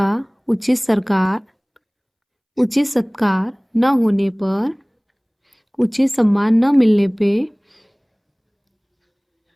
उचित सत्कार न होने पर, उचित सम्मान न मिलने पे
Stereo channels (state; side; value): identical; both; correlation 1.00